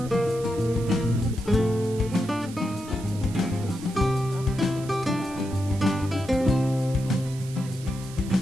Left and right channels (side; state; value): right; noise; hiss, 18 dB below the sound